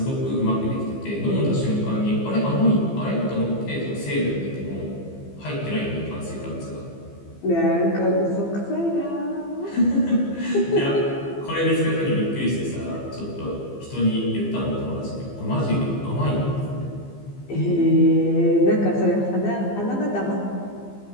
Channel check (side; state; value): right; late; 15 ms